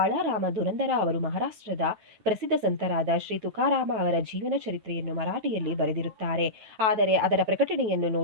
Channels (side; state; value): left; late; 9.1 ms